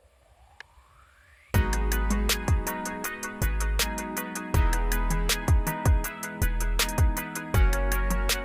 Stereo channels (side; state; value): both; identical; correlation 1.00